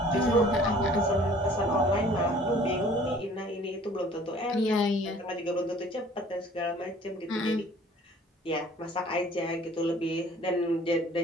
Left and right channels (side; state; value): both; normal; correlation 0.52